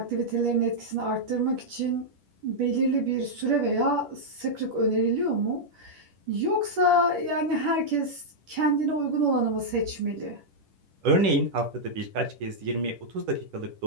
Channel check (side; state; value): left; late; 10 ms